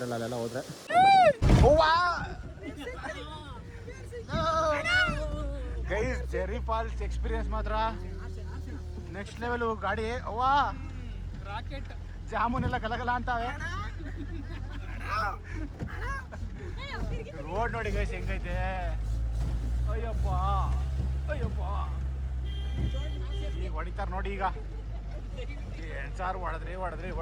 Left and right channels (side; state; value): both; identical; correlation 1.00